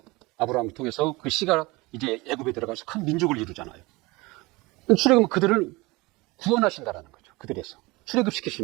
아브라함을 통해서 그 씨가 이제 애굽에 들어가서 큰 민족을 이루잖아요. 출애굽은 그들을 구원하신다라는 거죠. 그들에서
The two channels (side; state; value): left; quieter; 23.2 dB